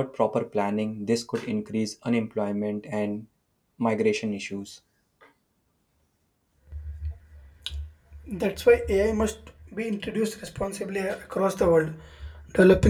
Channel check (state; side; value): identical; both; correlation 1.00